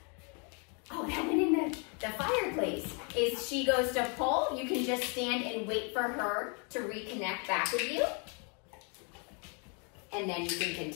oh, that went in the fireplace, is she goes to pull, you can just stand and wait for her to reconnect back with you, and then you can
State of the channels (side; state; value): right; quieter; 36.4 dB